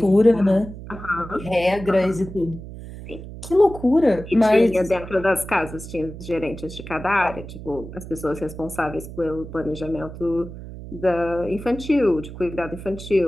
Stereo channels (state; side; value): noise; right; hum, 12 dB below the sound